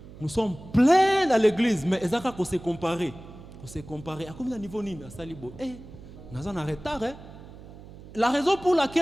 Nous sommes pleins dans l'église, mais ezaka ko se comparer. Ko se comparer. À combien de niveau nini à salibo? Nous en retard. La raison pour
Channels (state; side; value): noise; right; hum, 17 dB below the sound